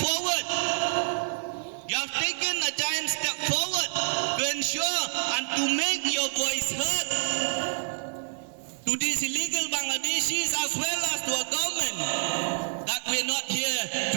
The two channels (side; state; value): left; silent; 58 dB below the other